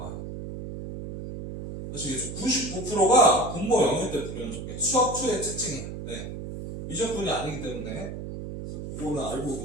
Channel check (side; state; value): right; noise; hum, 8 dB below the sound